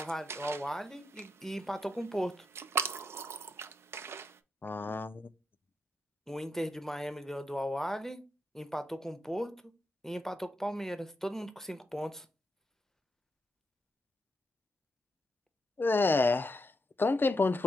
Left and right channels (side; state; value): both; normal; correlation 0.83